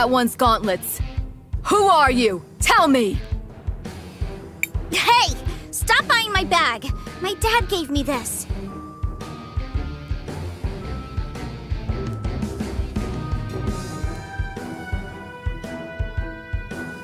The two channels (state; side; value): identical; both; correlation 1.00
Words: one's gauntlets. Who are you? Tell me! Hey! Stop buying my bag! My dad gave me this.